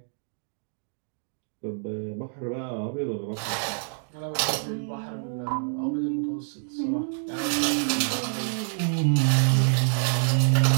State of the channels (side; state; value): left; silent; digital silence